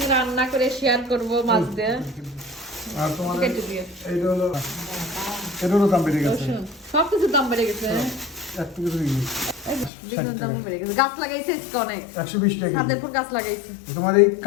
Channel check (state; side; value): drops out; right; at 9.9 s